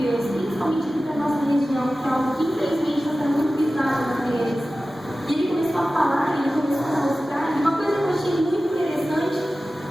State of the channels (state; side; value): normal; both; correlation 0.95